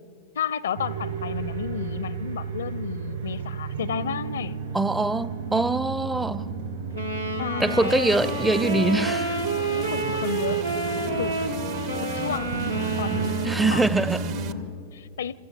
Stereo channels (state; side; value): normal; both; correlation 0.22